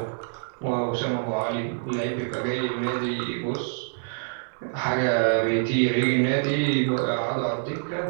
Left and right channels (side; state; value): left; silent; digital silence